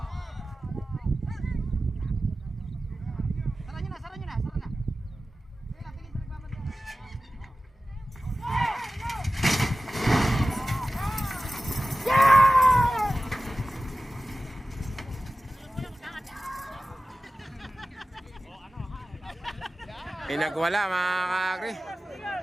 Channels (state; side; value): normal; both; correlation 0.96